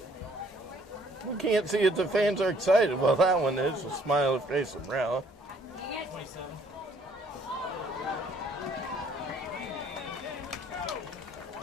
We can't see if the fans are excited. Well, that one is. A smiley face umbrella.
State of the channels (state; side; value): normal; both; correlation 0.62